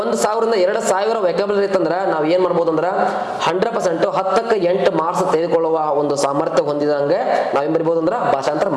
1,000 ರಿಂದ 2,000 ವ್ಯಾಕಬಲರಿ ಇತ್ತಂದ್ರ ನಾವ್ ಏನ್ ಮಾಡ್ಬೋದು ಅಂದ್ರ 100% 10ಕ್ಕೆ 8 ಮಾರ್ಕ್ಸ್ ತೆಗೆದುಕೊಳ್ಳುವ ಒಂದು ಸಾಮರ್ಥ್ಯ ಹೊಂದಿದಂಗೆ ನಾವೇನ್ ಬರಿಬಹುದು ಅಂದ್ರ ಭಾಷಾಂತರ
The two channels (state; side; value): identical; both; correlation 1.00